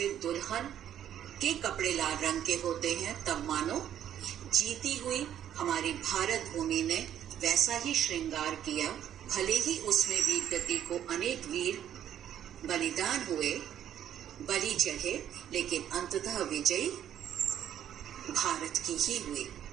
दुल्हन के कपड़े लाल रंग के होते हैं, तब मानो जीती हुई हमारी भारत भूमि ने वैसा ही श्रृंगार किया। भले ही उसमें वीर गति को अनेक वीर बलिदान हुए, बलि चढ़े, लेकिन अंततः विजयी भारत की ही हुई।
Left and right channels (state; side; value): quieter; left; 10.4 dB